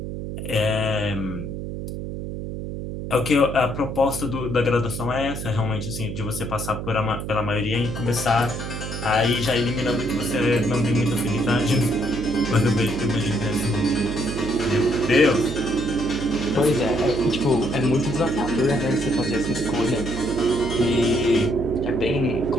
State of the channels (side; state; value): right; noise; hum, 6 dB below the sound